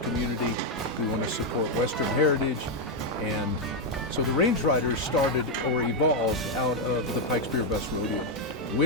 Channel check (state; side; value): normal; both; correlation 0.02